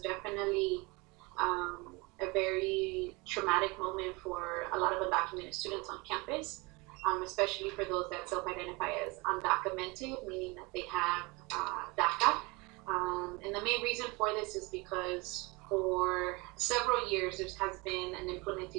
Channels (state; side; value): quieter; left; 26.1 dB